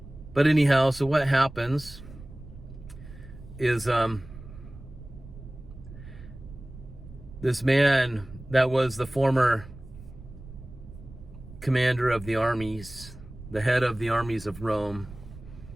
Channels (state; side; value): noise; right; rumble, 16 dB below the sound